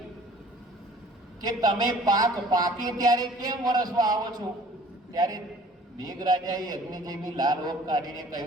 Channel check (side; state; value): both; normal; correlation 0.51